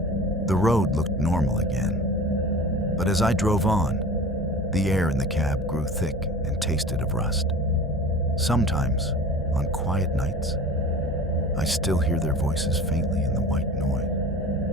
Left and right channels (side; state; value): both; normal; correlation 0.38